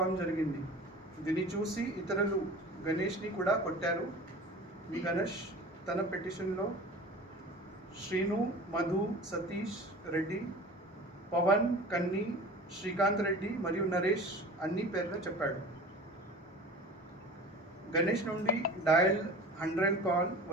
జరిగింది. దీన్ని చూసి ఇతరులు గణేష్ని కూడా కొట్టారు. ఈ గణేష్ తన పిటిషన్లో శ్రీను, మధు, సతీష్ రెడ్డి, పవన్, కన్ని, శ్రీకాంత్ రెడ్డి మరియు నరేష్ అన్ని పేర్లు చెప్పాడు. గణేష్ నుండి డయల్ 100 కాల్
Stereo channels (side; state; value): both; normal; correlation 0.39